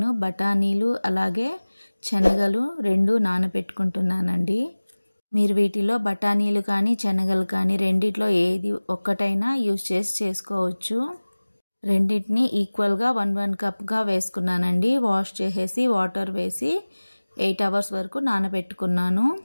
బఠానీలు అలాగే శనగలు 2 నానబెట్టుకుంటున్నానండి. మీరు వీటిలో బఠానీలు కానీ శనగలు కానీ రెండిట్లో ఏది ఒక్కటైనా యూజ్ చేసుకోవచ్చు. రెండింటిని ఈక్వల్గా 1 కప్గా వేసుకున్నానండి. వాష్ చేసేసి వాటర్ వేసి 8 అవర్స్ వరకు నానబెట్టుకున్నాను.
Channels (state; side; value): inverted; both; correlation -1.00